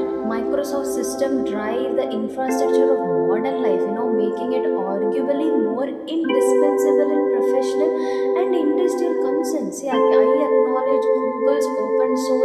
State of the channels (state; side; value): identical; both; correlation 1.00